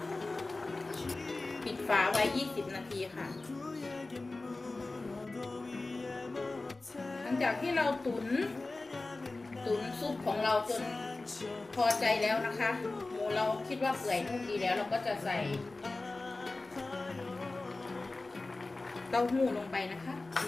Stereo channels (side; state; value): right; quieter; 3.2 dB